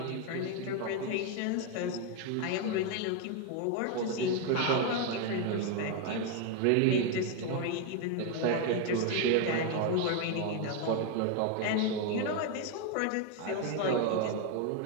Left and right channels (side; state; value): both; different; correlation 0.01